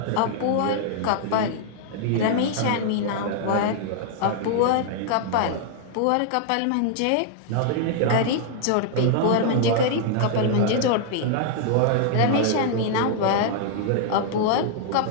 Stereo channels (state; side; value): different; both; correlation -0.01